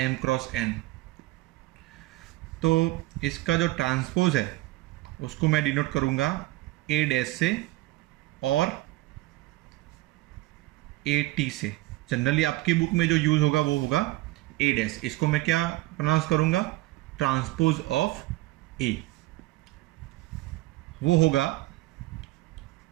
m cross n. तो इसका जो transpose है उसको मैं डिनोट करूंगा ए डैश से और ए टी से. जनरली आपकी बुक में जो यूज होगा वो होगा ए डैश. इसको मैं क्या प्रोनाउंस करूंगा? ट्रांसपोज ऑफ ए. वो होगा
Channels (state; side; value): quieter; left; 18.6 dB